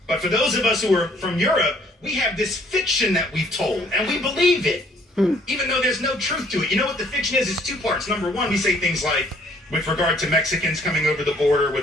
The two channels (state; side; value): normal; both; correlation 0.61